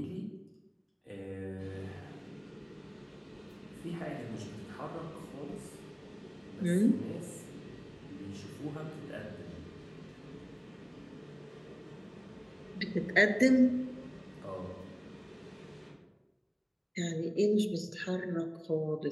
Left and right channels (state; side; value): identical; both; correlation 1.00